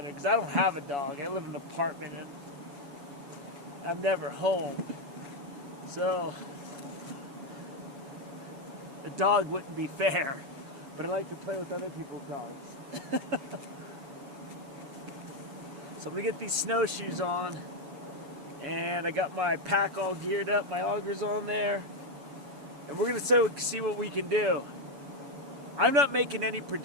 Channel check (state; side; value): late; left; 7.1 ms